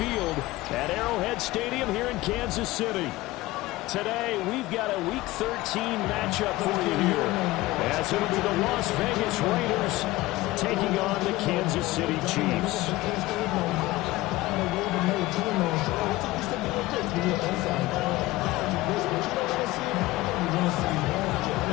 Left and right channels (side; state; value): right; quieter; 18.6 dB